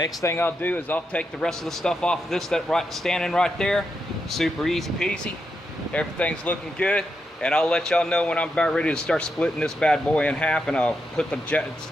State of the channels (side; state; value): both; normal; correlation 0.84